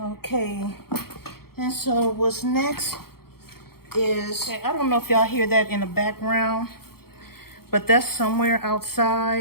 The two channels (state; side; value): late; right; 0.94 ms